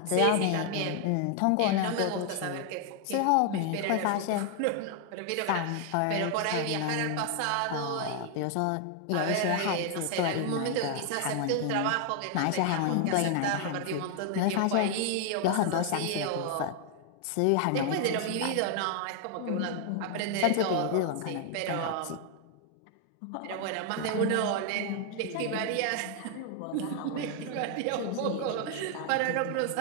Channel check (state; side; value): different; both; correlation 0.00